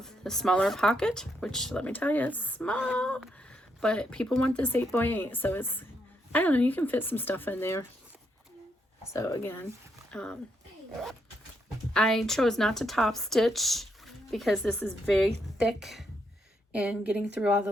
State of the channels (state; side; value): normal; both; correlation 0.78